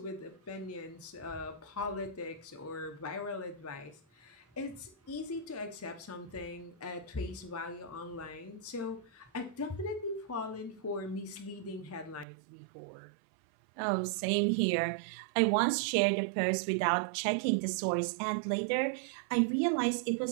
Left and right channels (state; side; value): drops out; left; at 12.2 s